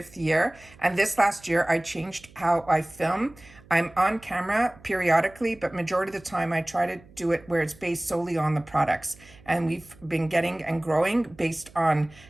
year. And this last year, I changed how I film. I'm on camera periodically, but majority of the time I try to do it where it's based solely on the products. And we've been getting and growing based on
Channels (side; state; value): right; noise; hum, 24 dB below the sound